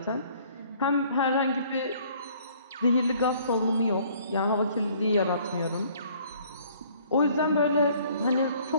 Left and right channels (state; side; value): inverted; both; correlation -0.58